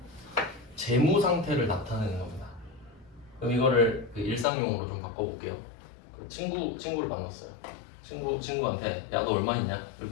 재무상태를 나타내는 겁니다. 그럼 이거를 일상용어로 좀 바꿔볼게요. 친구를 만났어요. 친구한테 야 너 얼마 있냐?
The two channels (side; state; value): right; drops out; at 4.5 s